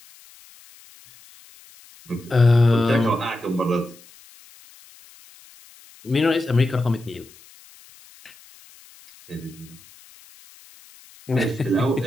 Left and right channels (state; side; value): noise; left; hiss, 25 dB below the sound